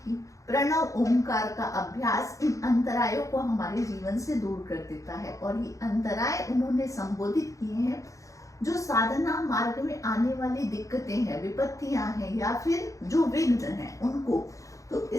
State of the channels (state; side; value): late; right; 0.16 ms